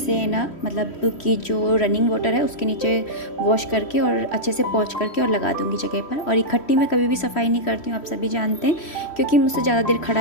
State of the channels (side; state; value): right; late; 3.1 ms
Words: ना, मतलब कि जो रनिंग वाटर है उसके नीचे वॉश करके और अच्छे से पोंछ करके और लगा दूँगी जगह पर। और इकट्ठी मैं कभी भी सफाई नहीं करती हूँ, आप सभी जानते हैं, क्योंकि मुझसे ज़्यादा देर